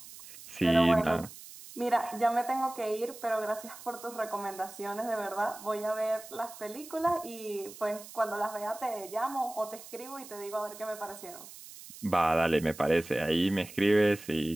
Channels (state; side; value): noise; right; hiss, 16 dB below the sound